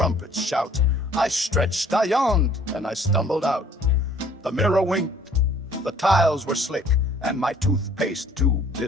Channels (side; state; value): both; normal; correlation 0.56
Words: shout. I stretched, I yawned, and I stumbled out. The mirror winked, the tiles were slick, and my toothpaste tube